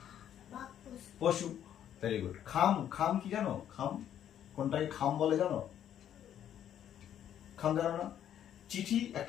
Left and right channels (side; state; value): right; quieter; 10.2 dB